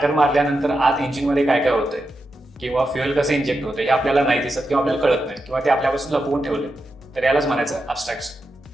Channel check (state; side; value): normal; both; correlation 0.88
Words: मारल्यानंतर आत इंजिनमध्ये काय काय होतंय किंवा फ्युएल कसं इंजेक्ट होतं हे आपल्याला नाही दिसत किंवा आपल्याला कळत नाही किंवा ते आपल्यापासून लपवून ठेवले. तर यालाच म्हणायचं ॲब्स्ट्रॅक्शन.